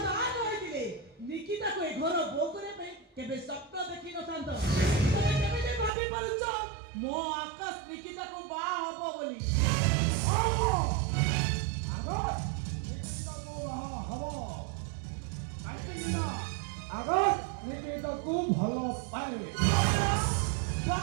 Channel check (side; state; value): left; drops out; at 5.9 s